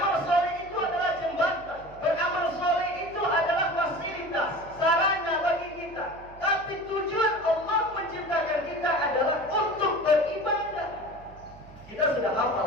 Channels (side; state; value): right; noise; hum, 20 dB below the sound